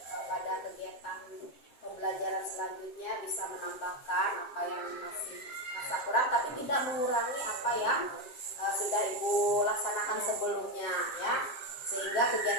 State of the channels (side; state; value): right; late; 7.5 ms